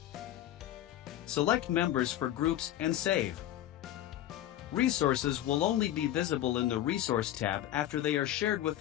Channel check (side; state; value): right; quieter; 12.8 dB